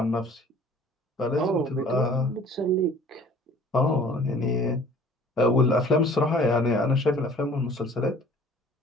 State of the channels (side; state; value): both; normal; correlation 0.51